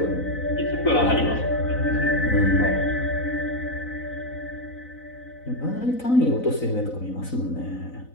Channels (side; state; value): right; late; 4.0 ms